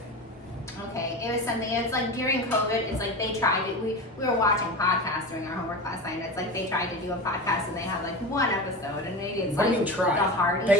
Okay, it was something, it's like during COVID, it's like they tried to, we were watching podcasts during our homework last night, and it's like they tried to do a podcast and they had like one episode, and maybe it's what do like you mean try? the Hardy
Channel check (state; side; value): normal; both; correlation 0.27